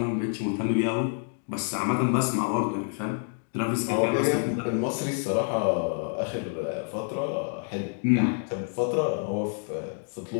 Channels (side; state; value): right; silent; 59 dB below the other